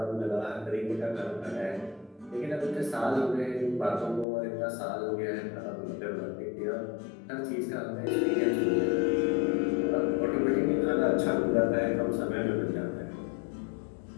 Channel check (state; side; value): drops out; right; at 4.2 s